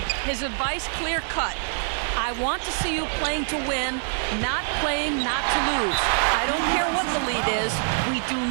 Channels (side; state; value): left; silent; 62 dB below the other